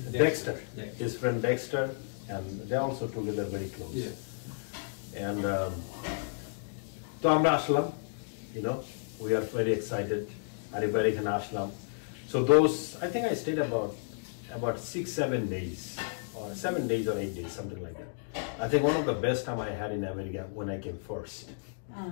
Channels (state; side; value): silent; right; digital silence